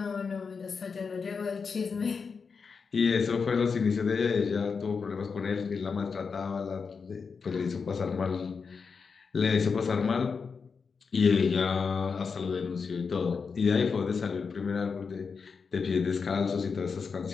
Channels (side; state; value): right; quieter; 5.4 dB